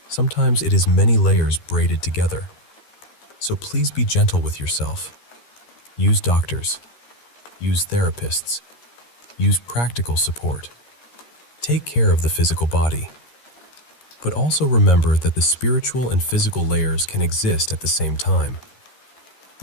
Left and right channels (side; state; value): right; late; 13 ms